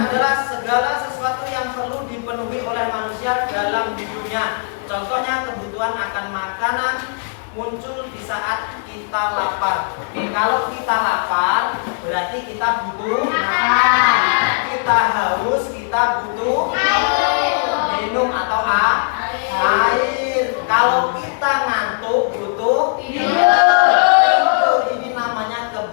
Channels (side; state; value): right; silent; digital silence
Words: segala sesuatu yang perlu dipenuhi oleh manusia dalam hidupnya. Contohnya kebutuhan akan makanan muncul di saat kita lapar. Oke, kalau kita lapar berarti kita butuh makan. Kita haus, kita butuh minum atau air. Kalau kita ngantuk butuh tidur. Ini namanya